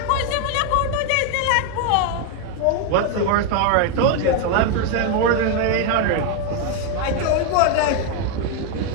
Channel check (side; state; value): both; different; correlation 0.01